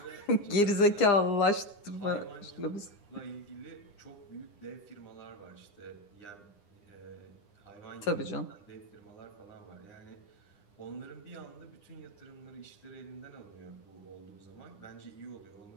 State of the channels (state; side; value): late; right; 9.9 ms